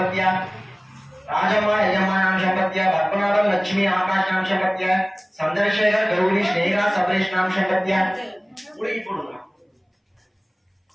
राजम्मा यजम्मा नाम संपत्तिया पद्मनाभम लक्ष्मी आकाश नाम संपत्तिया चंद्रशेखर गौरी स्नेहा सबरेश नाम संपत्तिया पूरी पढ़ूंगा.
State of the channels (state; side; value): identical; both; correlation 1.00